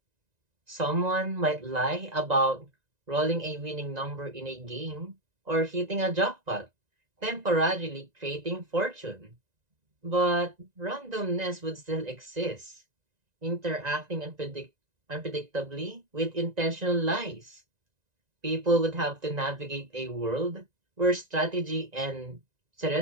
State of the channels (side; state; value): left; late; 1.9 ms